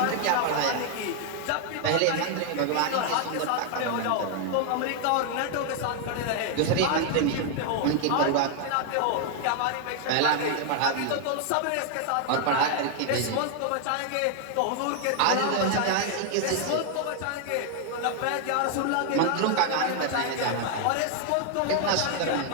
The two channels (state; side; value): different; both; correlation 0.00